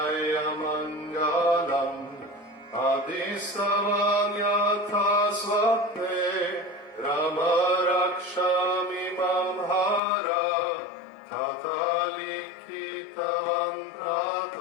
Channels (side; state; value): right; drops out; at 10.0 s